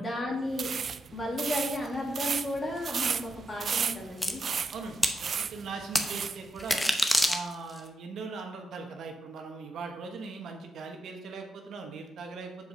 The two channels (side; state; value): both; normal; correlation 0.85